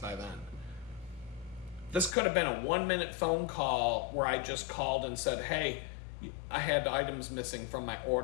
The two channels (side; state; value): right; drops out; at 2.1 s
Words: by then. This could have been a 1-minute phone call where I just called and said, hey, I had items missing from my